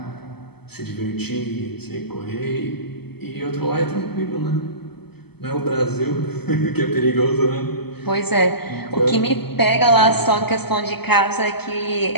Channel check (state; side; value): late; right; 0.97 ms